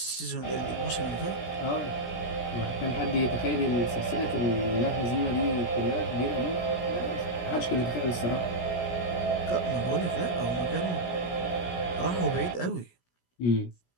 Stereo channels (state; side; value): late; right; 17 ms